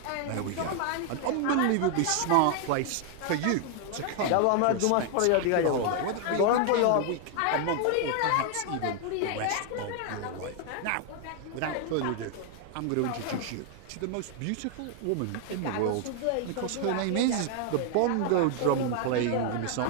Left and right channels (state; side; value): different; both; correlation 0.00